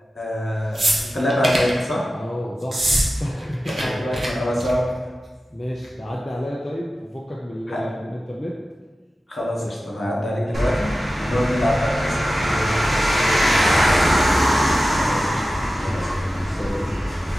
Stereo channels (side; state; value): both; normal; correlation 0.94